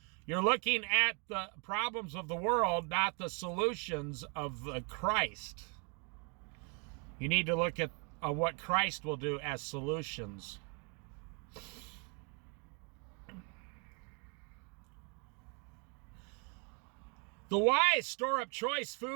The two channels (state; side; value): quieter; left; 36.2 dB